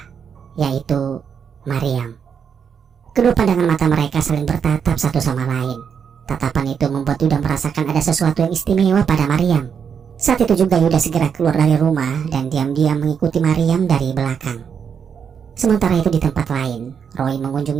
yaitu Maryam. Kedua pandangan mata mereka saling bertatap satu sama lain. Tatapan itu membuat Yuda merasakan ada sesuatu yang istimewa pada Maryam. Saat itu juga Yuda segera keluar dari rumah dan diam-diam mengikuti Maryam dari belakang. Sementara itu di tempat lain, Roy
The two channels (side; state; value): left; quieter; 7.1 dB